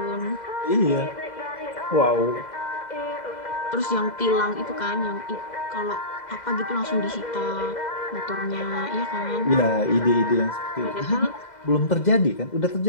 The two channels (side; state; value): right; late; 2.0 ms